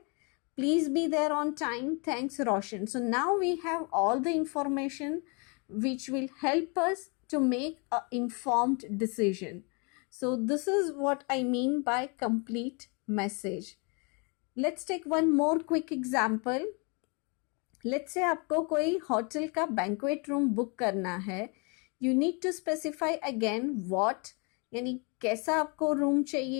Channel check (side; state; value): right; quieter; 33.2 dB